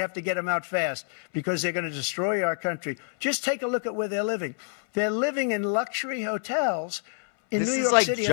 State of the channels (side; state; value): right; silent; 60 dB below the other